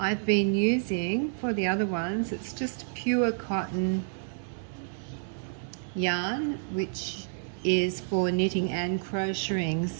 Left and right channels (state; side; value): silent; left; digital silence